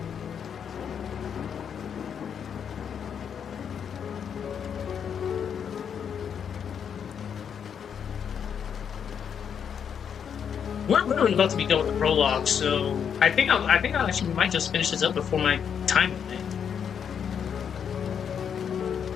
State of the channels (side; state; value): right; quieter; 7.7 dB